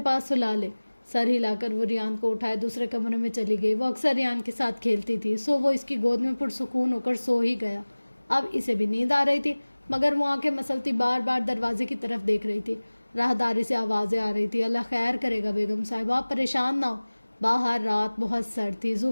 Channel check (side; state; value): both; inverted; correlation -1.00